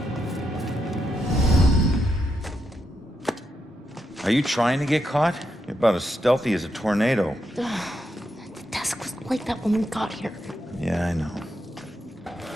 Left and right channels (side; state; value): both; normal; correlation 0.82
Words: Are you trying to get caught? You're about as stealthy as a tornado. The desk was like that when we got here. Yeah, I know.